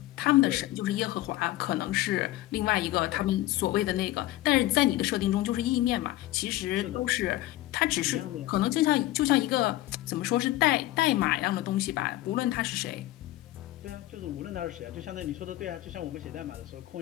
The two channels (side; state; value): right; quieter; 16.3 dB